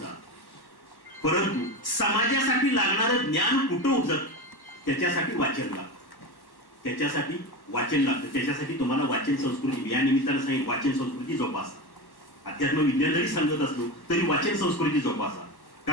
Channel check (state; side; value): late; right; 1.1 ms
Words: परंतु समाजासाठी लागणारं ज्ञान कुठं उपजत त्याच्यासाठी वाचन लागतं. त्याच्यासाठी वाचन लागतं. त्याच्यासाठी तुम्हाला वाचन संस्कृती, या निमित्तानं सांगितलं, वाचन संस्कृती जोपासा. अध्यात्म विज्ञान जरी सांगत असलो तरी वाचन संस्कृती जोपासा.